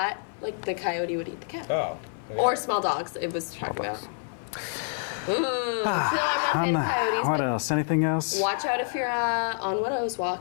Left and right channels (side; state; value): right; silent; 55 dB below the other